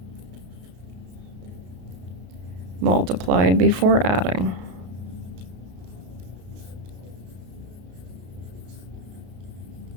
multiplied before adding.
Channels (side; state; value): left; late; 33 ms